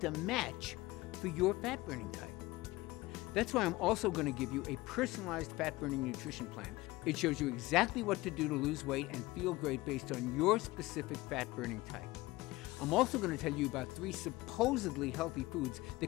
a match for your fat burning type? That's why I'm also going to give you a personalized fat burning nutrition plan. It shows you exactly what to do to lose weight and feel great based on your specific fat burning type. I'm also going to tell you about 3 supposedly healthy foods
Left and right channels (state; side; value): quieter; right; 19.8 dB